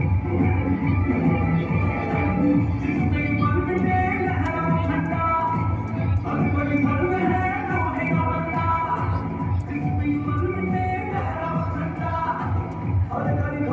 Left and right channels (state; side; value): identical; both; correlation 1.00